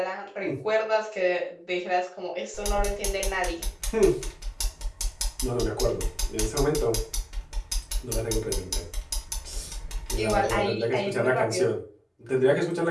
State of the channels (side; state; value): both; identical; correlation 1.00